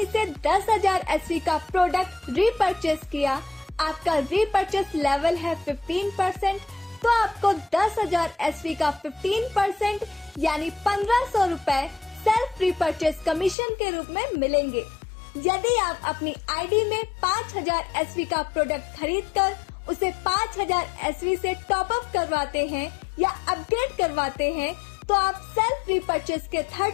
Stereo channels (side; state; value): right; drops out; at 13.6 s